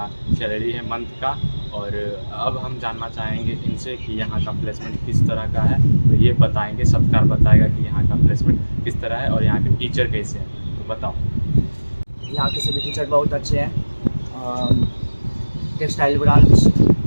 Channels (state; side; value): inverted; both; correlation -1.00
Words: सैलरी है मंथ का। और अब हम जानना चाहेंगे इनसे कि यहाँ का प्लेसमेंट किस तरह का है। तो ये बताएंगे, सत्कार बताएगा कि यहाँ का प्लेसमेंट किस तरह है और यहाँ के टीचर कैसे हैं। तो बताओ। यहाँ के सभी टीचर बहुत अच्छे हैं। टेक्सटाइल ब्रांच